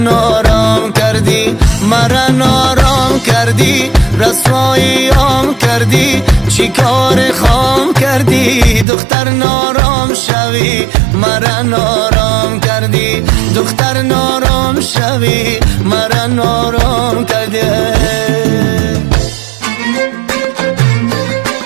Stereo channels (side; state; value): left; drops out; at 8.8 s